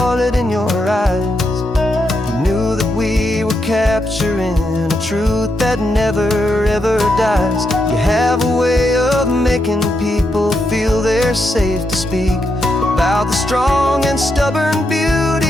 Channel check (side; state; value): both; normal; correlation 0.82